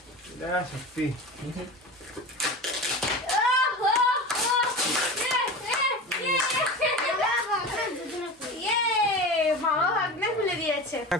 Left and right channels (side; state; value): both; normal; correlation 0.30